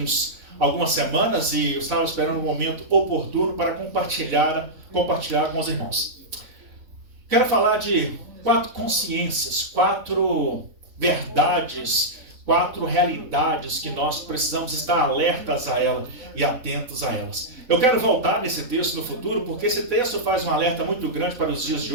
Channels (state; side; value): late; left; 4.0 ms